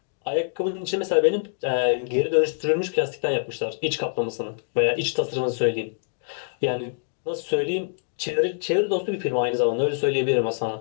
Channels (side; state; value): right; silent; digital silence